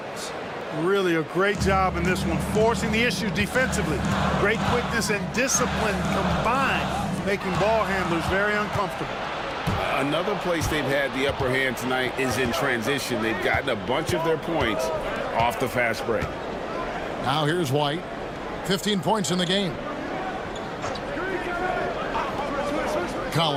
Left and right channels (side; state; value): both; identical; correlation 1.00